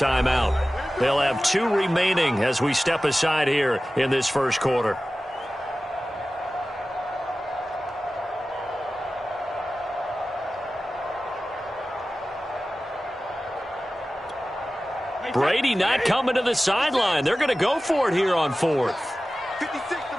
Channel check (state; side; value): normal; both; correlation 0.96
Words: They'll have 2 remaining as we step aside here in this first quarter. Brady not coming to the sideline. They're going to go for it here on 4th. 56, the